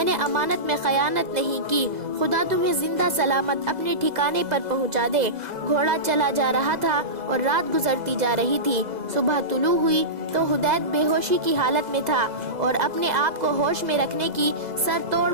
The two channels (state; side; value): late; left; 2.0 ms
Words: نے امانت میں خیانت نہیں کی، خدا تمہیں زندہ سلامت اپنے ٹھکانے پر پہنچا دے۔ گھوڑا چلا جا رہا تھا اور رات گزرتی جا رہی تھی۔ صبح طلوع ہوئی تو حدید بے ہوشی کی حالت میں تھا اور اپنے آپ کو ہوش میں رکھنے کی سر توڑ